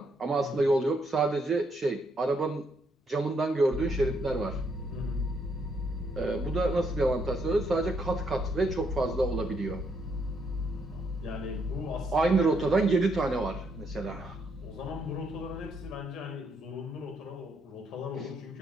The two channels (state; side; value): normal; both; correlation 0.74